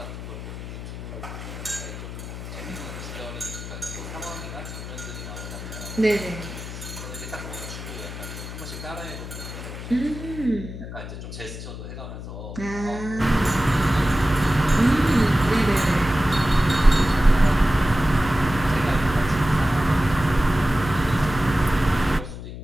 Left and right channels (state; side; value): noise; left; hum, 10 dB below the sound